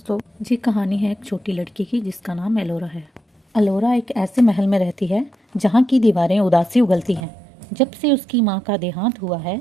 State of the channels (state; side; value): drops out; left; at 7.2 s